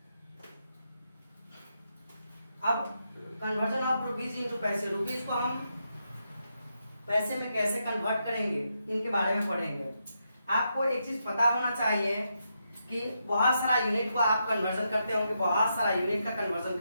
अब कन्वर्जन ऑफ रुपीज इंटू पैसे, रुपीज को हम पैसे में कैसे कन्वर्ट करेंगे इनके बारे में पढ़ेंगे। आपको एक चीज पता होना चाहिए कि बहुत सारा यूनिट को आप कन्वर्जन करते होंगे, बहुत सारा यूनिट का कन्वर्जन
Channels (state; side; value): inverted; both; correlation -0.83